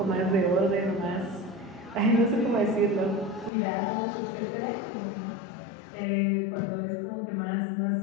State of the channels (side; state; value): right; drops out; at 3.5 s